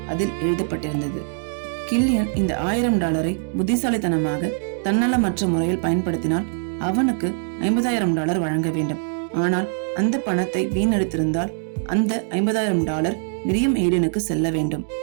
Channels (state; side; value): silent; left; digital silence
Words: அதில் எழுதப்பட்டிருந்தது, கில்லியன் இந்த $1000 புத்திசாலித்தனமாக தன்னலமற்ற முறையில் பயன்படுத்தினால் அவனுக்கு $50,000 வழங்க வேண்டும். ஆனால் அந்த பணத்தை வீணடித்திருந்தால் அந்த $50,000 மிரியம் ஹேடனுக்கு செல்ல வேண்டும்.